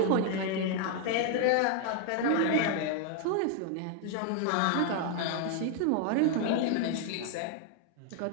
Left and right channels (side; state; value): both; different; correlation 0.00